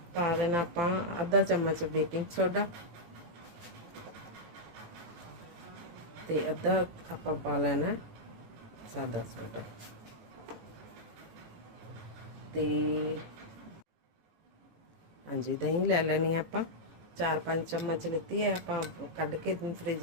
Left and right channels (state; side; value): late; left; 18 ms